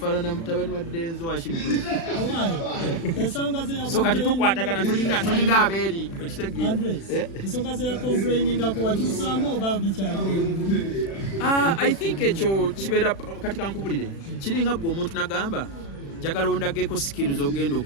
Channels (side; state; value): right; late; 36 ms